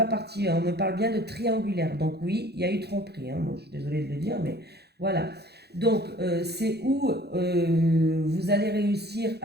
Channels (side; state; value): left; late; 0.48 ms